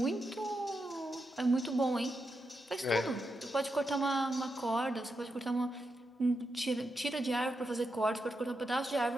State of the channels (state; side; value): normal; both; correlation 0.86